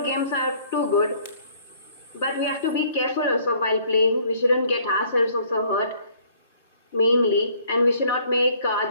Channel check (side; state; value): both; inverted; correlation -0.60